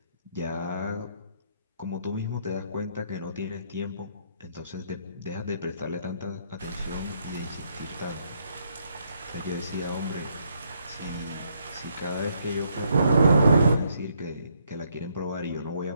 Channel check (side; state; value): both; inverted; correlation -0.73